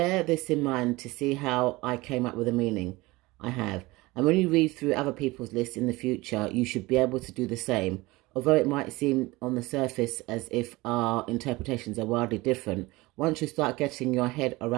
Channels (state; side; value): quieter; left; 21.3 dB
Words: this in mind to see how I came up with a meaning I have. And when you read through other people's lists in the future, you should be able to do the same. Although it might seem on the surface as if our interpretations are wildly different, once you start getting your head